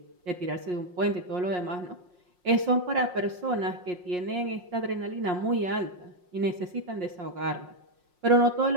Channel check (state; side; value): late; left; 5.6 ms